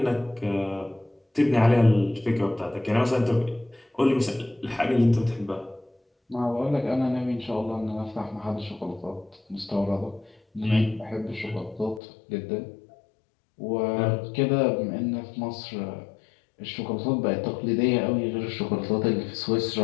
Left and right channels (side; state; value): right; drops out; at 12.0 s